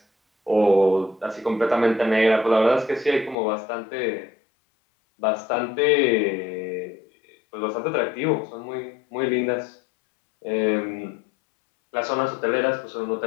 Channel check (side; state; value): right; drops out; at 3.4 s